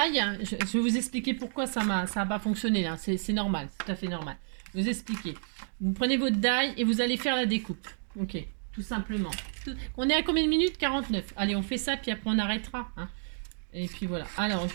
je vais vous expliquer pourquoi ça n'a pas fonctionné. Là. C'est normal. C'est tout à fait normal. Je vais vous expliquer. Vous prenez votre die et vous allez faire la découpe. Ok. Tout simplement. On est à combien de minutes? 49. Allez, on fait ça, puis après on arrêtera. Hein. Et puis voilà. Alors,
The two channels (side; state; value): left; silent; digital silence